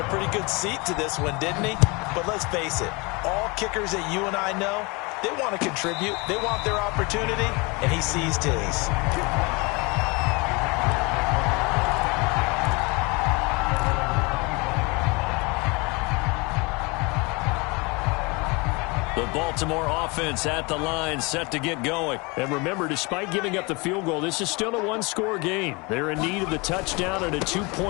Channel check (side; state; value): right; quieter; 27.5 dB